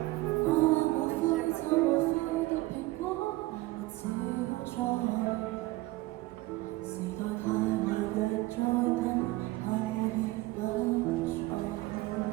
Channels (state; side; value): quieter; left; 19.6 dB